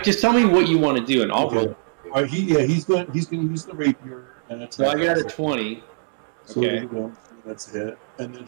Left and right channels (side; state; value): left; silent; digital silence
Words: Just tell me what you want to do and I'll roll. All right, he's going to use the rapier and attack. So I got a 20. So okay. That's it. And then